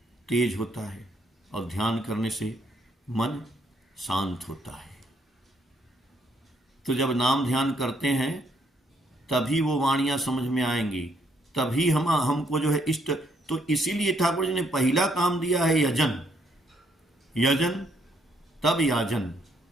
तेज होता है, और ध्यान करने से मन शांत होता है। तो जब नाम ध्यान करते हैं तभी वो वाणियां समझ में आएंगी, तभी हमको जो है इष्ट। तो इसीलिए ठाकुर जी ने पहला काम दिया है यजन, यजन तब याजन।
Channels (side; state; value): both; normal; correlation 0.71